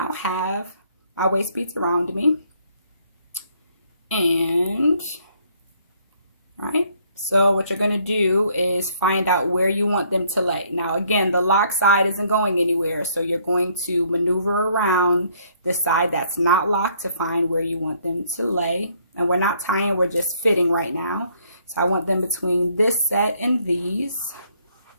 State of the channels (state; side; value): inverted; both; correlation -0.65